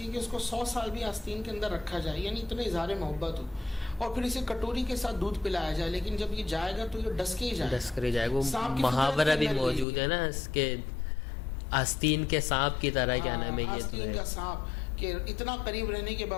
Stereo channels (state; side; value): drops out; right; at 9.9 s